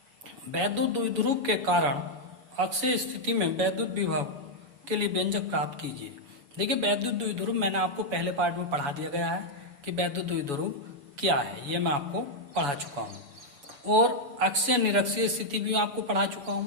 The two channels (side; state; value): left; late; 7.1 ms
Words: वैद्युत द्विध्रुव के कारण अक्षीय स्थिति में वैद्युत विभव के लिए व्यंजक प्राप्त कीजिए। देखिए, वैद्युत द्विध्रुव मैंने आपको पहले पार्ट में पढ़ा दिया गया है कि वैद्युत द्विध्रुव क्या है, ये मैं आपको पढ़ा चुका हूँ, और अक्षीय निरक्षीय स्थिति भी आपको पढ़ा चुका